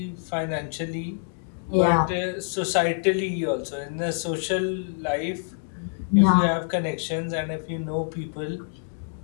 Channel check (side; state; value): right; silent; digital silence